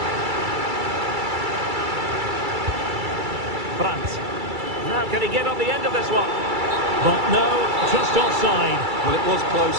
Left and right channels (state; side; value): late; left; 2.3 ms